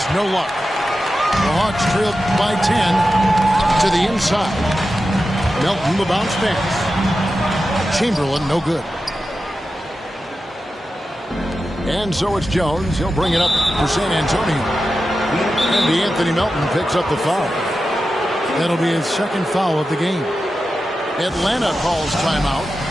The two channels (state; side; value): normal; both; correlation 0.91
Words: no luck. The Hawks trailed by 10 to the inside. Melton, the bounce pass. Chamberlain, no good. And so it's Jones. He'll bring it up for San Antonio. And Anthony Melton picks up the foul. That'll be his 2nd foul of the game. Atlanta calls timeout.